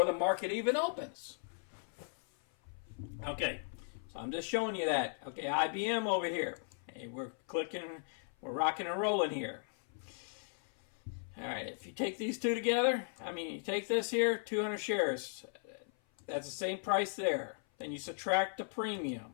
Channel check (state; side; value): silent; right; 53 dB below the other